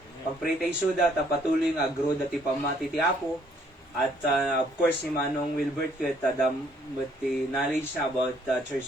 Pagpray tay suda ta patuloy nga grow dati pamati ti Apo. At of course, ni Manong Wilbert with the knowledge about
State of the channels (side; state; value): both; normal; correlation 0.65